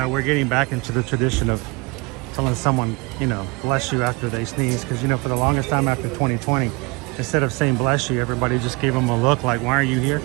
we're getting back into the tradition of telling someone, you know, bless you after they sneeze, because, you know, for the longest time after 2020, instead of saying bless you, everybody just gave them a look like, why are you here?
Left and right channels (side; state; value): left; quieter; 27.5 dB